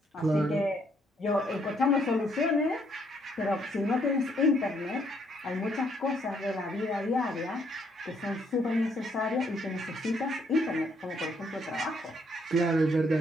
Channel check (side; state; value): both; normal; correlation 0.70